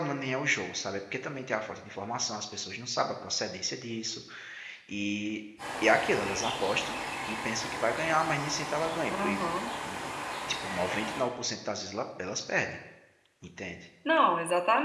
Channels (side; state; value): both; identical; correlation 1.00